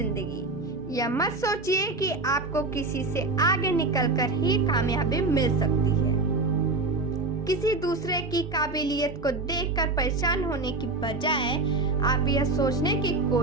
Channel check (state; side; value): quieter; left; 3.4 dB